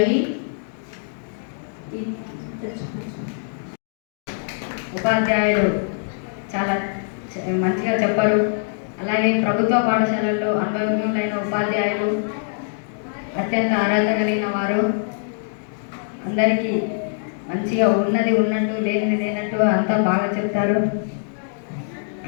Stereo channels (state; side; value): silent; right; digital silence